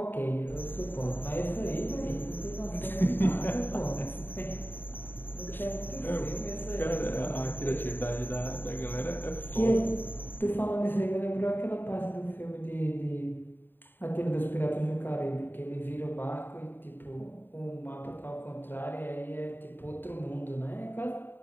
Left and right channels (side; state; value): right; late; 0.095 ms